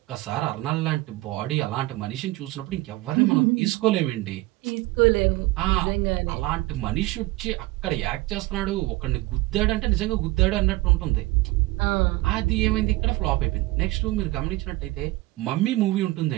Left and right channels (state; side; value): quieter; left; 19.3 dB